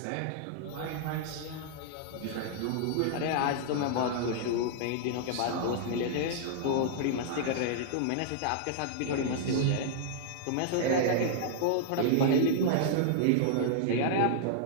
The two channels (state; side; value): different; both; correlation -0.01